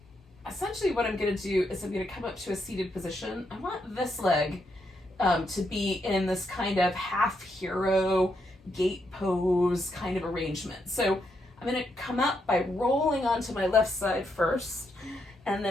essentially what I'm going to do is I'm going to come up to a seated position. I want this leg to be in this kind of half hero gate pose kind of arrangement. So I'm going to come up by rolling onto my left side first, and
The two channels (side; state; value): both; normal; correlation 0.80